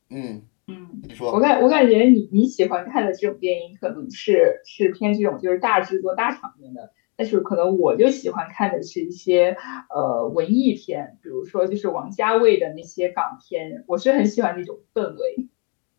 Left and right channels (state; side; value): quieter; right; 36.5 dB